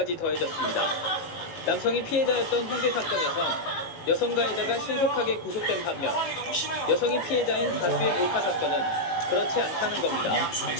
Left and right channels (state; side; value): late; right; 18 ms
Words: 더해졌습니다. 남성이 피해자였던 홍대 사건에서 여성 가해자가 신속하게 구속된 반면 여성이 피해자인 다수의 몰카 사건은 그렇지 않다는 겁니다.